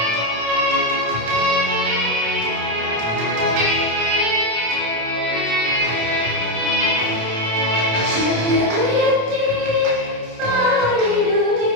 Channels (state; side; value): late; left; 27 ms